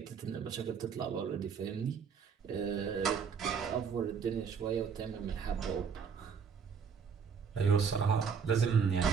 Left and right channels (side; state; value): left; quieter; 6.4 dB